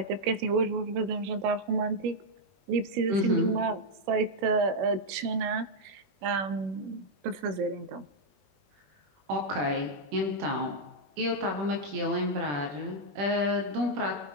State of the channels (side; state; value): left; late; 21 ms